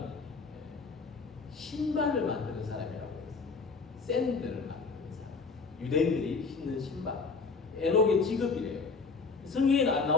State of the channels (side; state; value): right; quieter; 4.5 dB